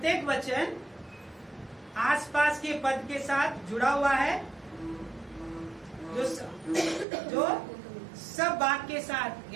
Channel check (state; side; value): drops out; left; at 7.1 s